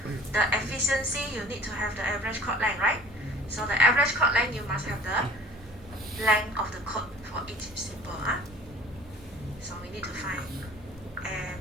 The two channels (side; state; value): both; normal; correlation 0.49